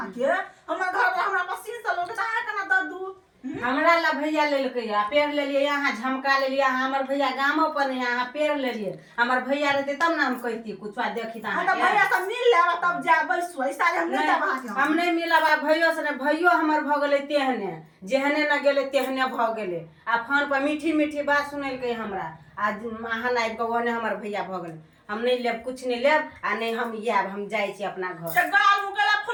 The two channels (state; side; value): identical; both; correlation 1.00